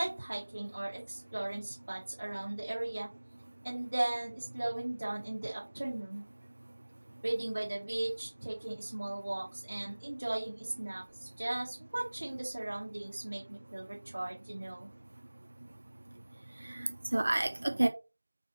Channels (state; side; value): inverted; both; correlation -1.00